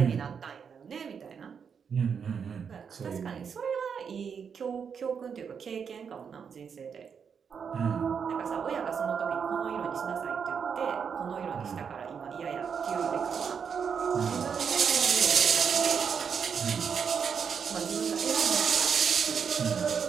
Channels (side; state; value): left; quieter; 6.7 dB